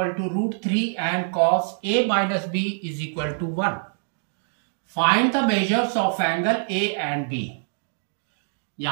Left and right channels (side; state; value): left; silent; digital silence